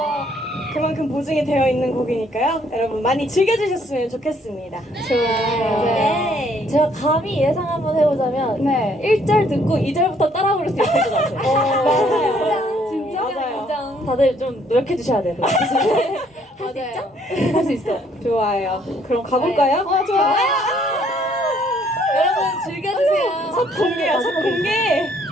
그만큼 보증이 되어 있는 곡이니까요. 여러분 많이 즐겨주셨으면 좋겠습니다. 네. 제가 감히 예상 한번 해보자면 네. 1절 듣고 2절부터 따라 부를 수 있을 것 같아요. 맞아요. 진짜? 맞아요. 다들 좀 노력해 주셔야 돼요. 맞아요. 할 수 있어. 좋아요. 그럼 가볼까요? 좋아요. 여러분 즐겨주세요. 첫 공개야, 첫 공개.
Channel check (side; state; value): both; normal; correlation 0.65